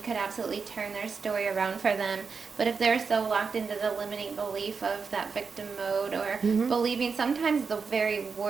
could absolutely turn their story around for them. But if they're so locked into the limiting belief of that victim mode, or believing sometimes the very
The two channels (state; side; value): quieter; left; 5.3 dB